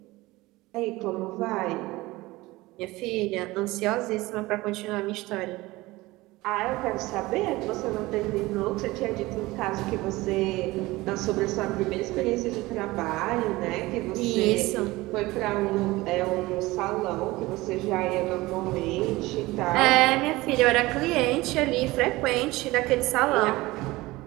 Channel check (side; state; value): left; quieter; 20.0 dB